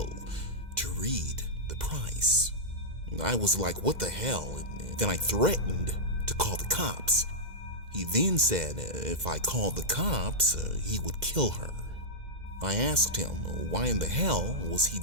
to read the price. I was like, what the hell? And then I threatened to call the cops. He then said if I called the cops, he would kill her. I asked him why in the hell was he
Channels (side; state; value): left; late; 2.0 ms